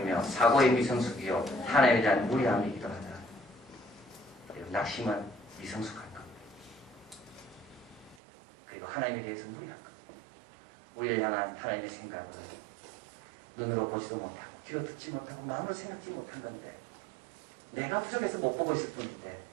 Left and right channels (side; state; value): left; drops out; at 8.2 s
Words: 사고의 미성숙이요 하나님에 대한 무리함이기도 하다. 낙심은 미성숙한 겁니다. 그리고 하나님에 대해서 무리한 겁니다. 우리를 향한 하나님의 생각을 눈으로 보지도 못하고 귀로 듣지 못하고 마음으로 생각지 못한 건데 내가 부족해서 못 보고 있을 뿐인데